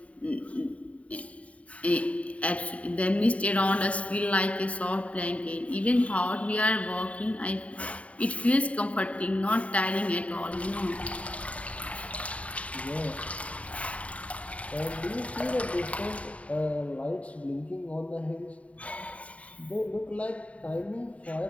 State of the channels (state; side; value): late; right; 0.066 ms